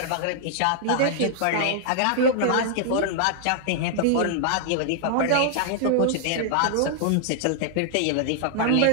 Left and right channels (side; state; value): both; different; correlation -0.01